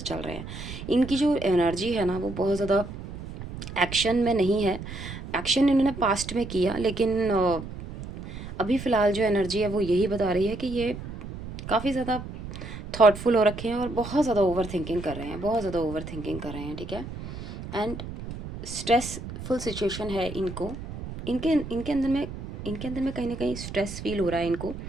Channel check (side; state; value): right; noise; rumble, 10 dB below the sound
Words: चल रहे हैं। इनकी जो एनर्जी है ना वो बहुत ज़्यादा एक्शन में नहीं है। एक्शन इन्होंने पास्ट में किया, लेकिन अभी फ़िलहाल जो एनर्जी है वो यही बता रही है कि ये काफ़ी ज़्यादा थॉटफुल हो रखे हैं और बहुत ज़्यादा ओवर थिंकिंग कर रहे हैं, बहुत ज़्यादा ओवर थिंकिंग कर रहे हैं, ठीक है। एंड स्ट्रेसफुल सिचुएशन है इनको, इनके इनके अंदर में कहीं ना कहीं स्ट्रेस फील हो रहा है इनको।